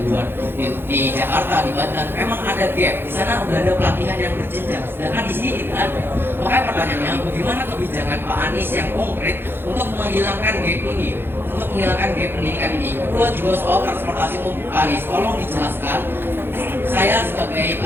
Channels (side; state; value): left; late; 0.10 ms